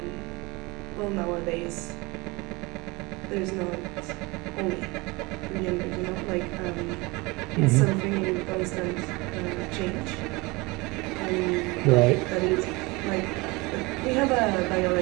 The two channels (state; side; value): quieter; left; 23.9 dB